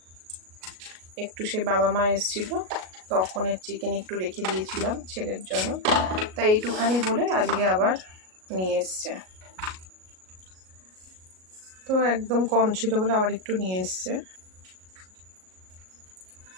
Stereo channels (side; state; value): left; late; 38 ms